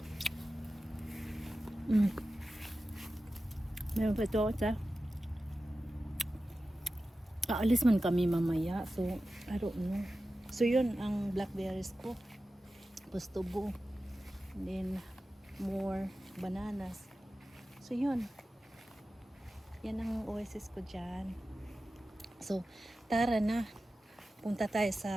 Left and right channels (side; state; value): both; normal; correlation 0.94